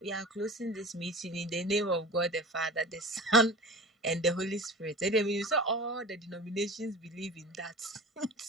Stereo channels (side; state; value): both; normal; correlation 0.36